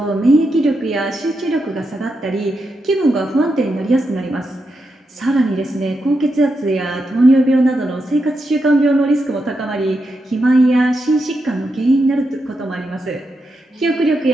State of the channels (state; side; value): normal; both; correlation 0.85